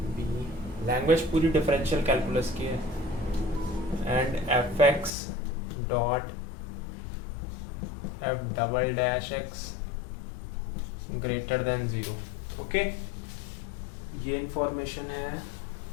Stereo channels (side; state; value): right; drops out; at 5.1 s